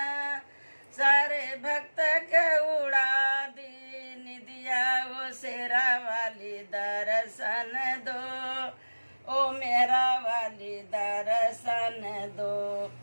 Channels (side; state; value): both; inverted; correlation -1.00